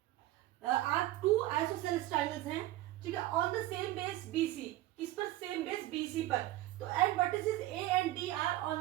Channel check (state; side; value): quieter; left; 16.0 dB